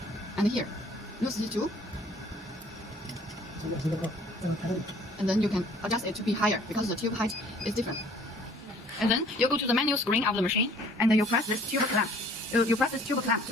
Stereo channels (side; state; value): both; normal; correlation 0.55